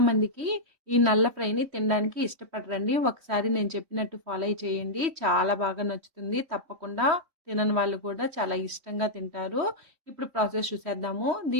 మందికి ఈ నల్ల ఫ్రైని తినడానికి ఇష్టపడరండి. ఒకసారి నేను చెప్పినట్టు ఫాలో చేయండి, చాలా బాగా నచ్చుతుంది. తప్పకుండా తినని వాళ్ళు కూడా చాలా ఇష్టంగా తింటారు. ఇప్పుడు ప్రాసెస్ చూసేద్దాము.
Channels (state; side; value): late; left; 3.1 ms